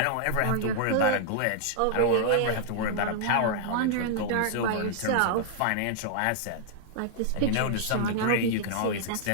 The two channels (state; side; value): different; both; correlation -0.01